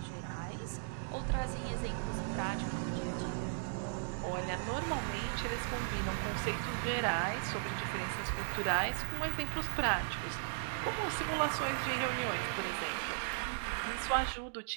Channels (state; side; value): silent; left; digital silence